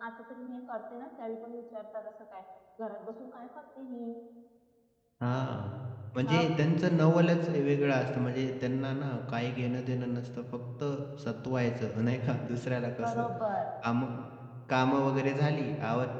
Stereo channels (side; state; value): both; identical; correlation 1.00